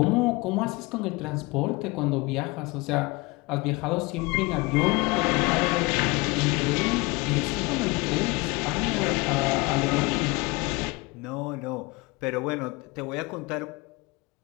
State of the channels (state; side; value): quieter; right; 24.6 dB